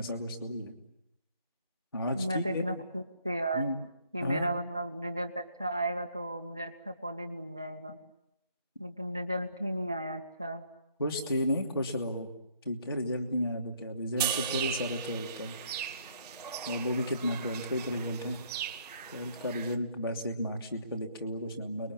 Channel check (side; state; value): both; inverted; correlation -0.65